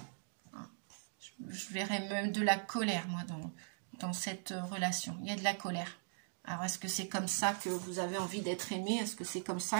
Je verrais même de la colère, moi, dans cette relation. Il y a de la colère. Alors, est-ce que c'est comme ça que vous avez envie d'être aimé? Est-ce que c'est comme ça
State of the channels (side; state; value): left; silent; digital silence